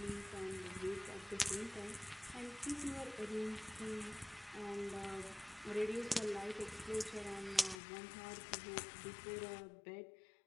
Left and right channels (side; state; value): right; drops out; at 7.8 s